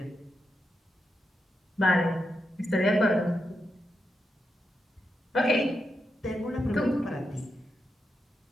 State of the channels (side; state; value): both; normal; correlation 0.85